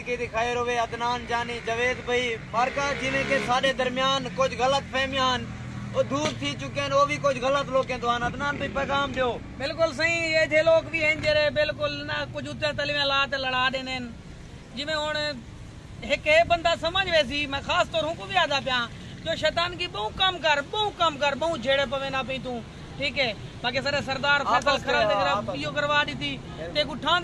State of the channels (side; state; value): both; identical; correlation 1.00